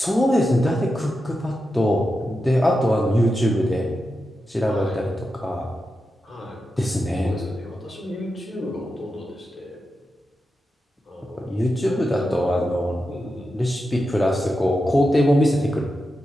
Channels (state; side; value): normal; both; correlation 0.89